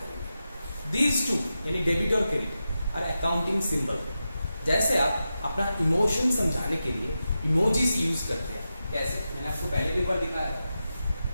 दीज टू यानी डेबिट और क्रेडिट और अकाउंटिंग सिंबल। जैसे आप अपना इमोशन समझाने के लिए इमोजीज यूज करते हैं, कैसे मैंने आपको पहले भी एक बार दिखाया था।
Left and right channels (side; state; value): both; inverted; correlation -0.90